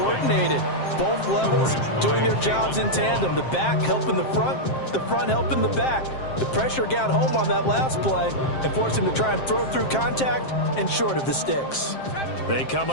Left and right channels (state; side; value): late; right; 7.6 ms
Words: Both levels doing their jobs in tandem. The back helping the front helping the back. The pressure got home on that last play and forced him to try and throw through contact and short of the sticks. They come